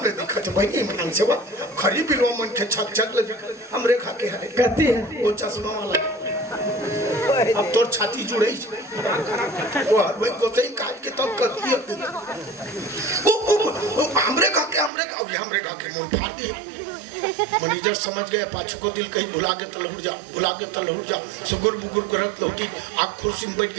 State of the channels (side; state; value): left; drops out; at 14.9 s